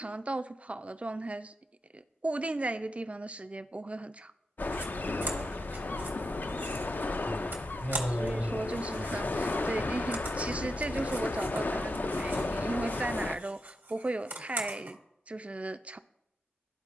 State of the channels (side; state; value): both; normal; correlation 0.84